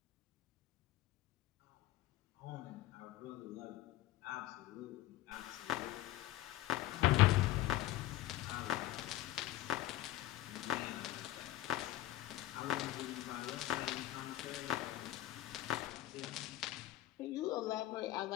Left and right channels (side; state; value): right; quieter; 15.3 dB